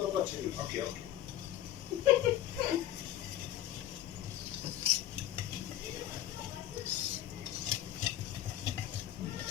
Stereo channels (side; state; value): right; quieter; 12.7 dB